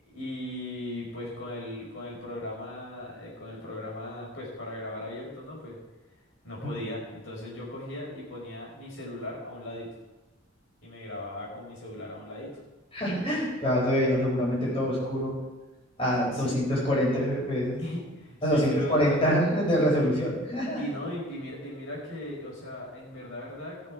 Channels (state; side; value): normal; both; correlation 0.46